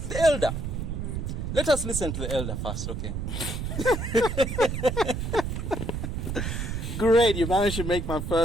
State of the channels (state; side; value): noise; right; rumble, 3 dB below the sound